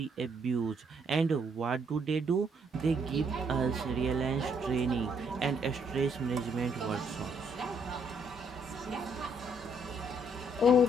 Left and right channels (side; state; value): both; normal; correlation 0.69